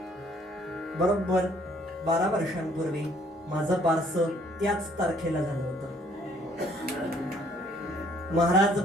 बरोबर 12 वर्षांपूर्वी माझं बारसं त्याच तारखेला झालं होतं. महाराज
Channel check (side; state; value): both; normal; correlation 0.62